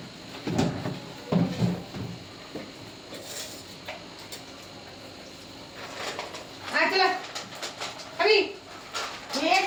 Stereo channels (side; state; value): both; identical; correlation 1.00